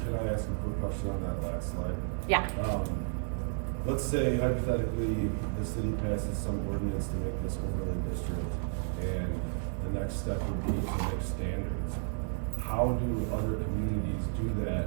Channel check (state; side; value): silent; left; 56 dB below the other